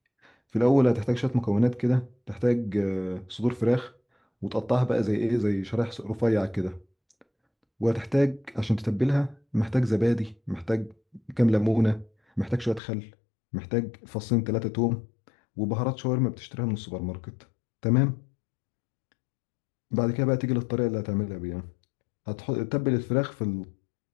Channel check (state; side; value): drops out; right; at 12.8 s